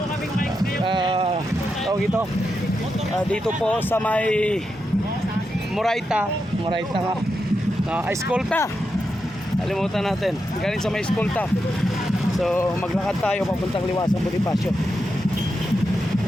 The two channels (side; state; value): both; normal; correlation 0.86